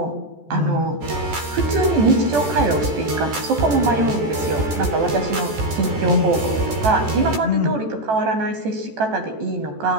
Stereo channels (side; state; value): left; late; 14 ms